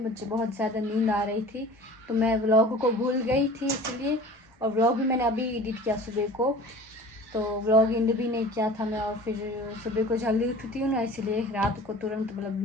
बहुत ज़्यादा नींद आ रही थी तो मैं व्लॉग को भूल गई थी इसलिए, और व्लॉग भी मैंने अभी एडिट किया सुबह को, तो व्लॉग एंड भी नहीं किया था मैं। और फिर सुबह को जल्दी उठती हूँ ना इसलिए रात को तुरंत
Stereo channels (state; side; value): normal; both; correlation 0.42